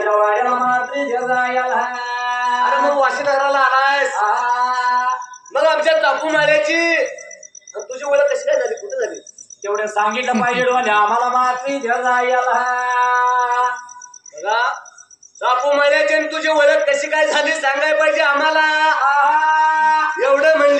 वाड्याला मात्र जायला. अरे मग वाशी नगराला आलायस, मग आमच्या चापू माळ्याची तुझी ओळख कशी काय झाली, कुठे झाली? तेवढं सांगितलं पाहिजे डोल्या आम्हाला मात्र जायला. बघा चापू माळ्याची आणि तुझी ओळख कशी काय झाली सांगाय पाहिजे आम्हाला. एवढं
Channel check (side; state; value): both; identical; correlation 1.00